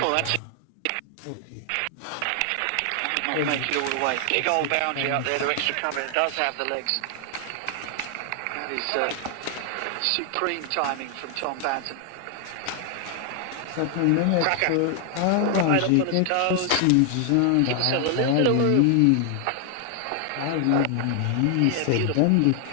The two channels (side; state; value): both; different; correlation 0.00